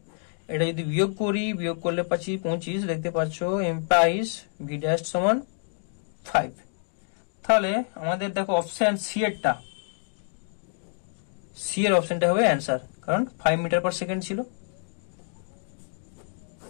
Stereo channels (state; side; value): silent; right; digital silence